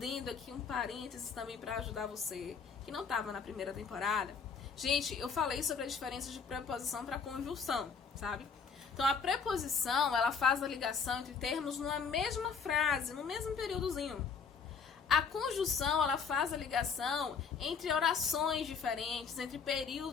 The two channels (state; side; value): quieter; right; 5.8 dB